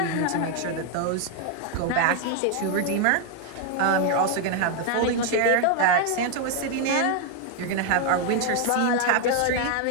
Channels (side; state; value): both; different; correlation 0.01